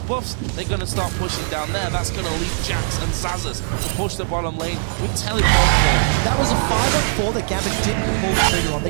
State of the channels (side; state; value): left; silent; 56 dB below the other